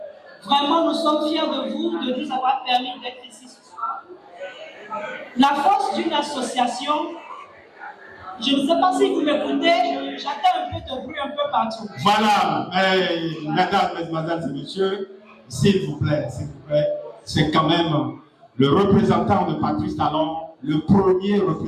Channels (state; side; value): identical; both; correlation 1.00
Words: Vraiment, nous sommes fiers de vous, de nous avoir permis d'être ici ce soir. La force d'une association, je ne sais pas si vous m'écoutez, j'entends un peu de bruit un peu partout. Voilà, mesdames, mesdemoiselles et messieurs, s'il vous plaît, c'est quand même le représentant de Patrice Talon, le premier